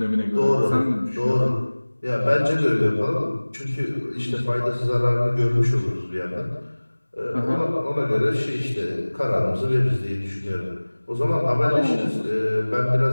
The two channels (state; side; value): inverted; both; correlation -1.00